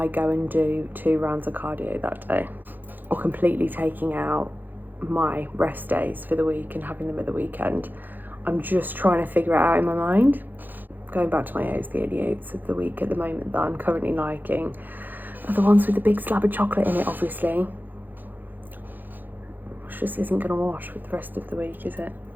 go and do 2 rounds of cardio that day, or completely taking out my rest days for the week and having them at the weekend. I'm just trying to figure it out in my mind. Going back to my oats, the only oats of the week at the moment that I'm currently liking are the ones with the big slab of chocolate in it, obviously. Which just isn't going to wash with the rest of the week, is it?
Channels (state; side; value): late; left; 0.087 ms